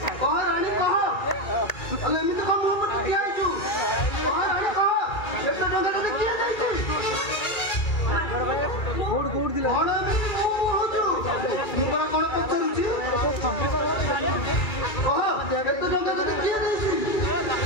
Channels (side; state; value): right; late; 2.3 ms